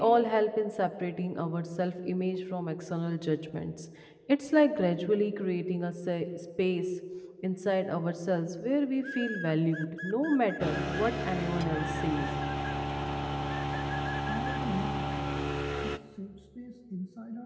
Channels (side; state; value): both; identical; correlation 1.00